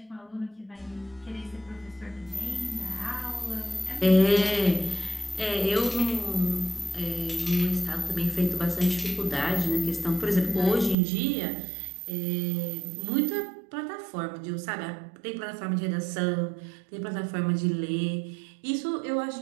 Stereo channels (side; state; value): left; drops out; at 11.0 s